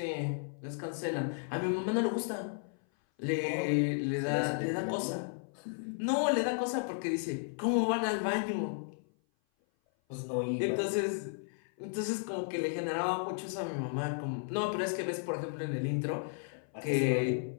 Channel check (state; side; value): silent; right; 55 dB below the other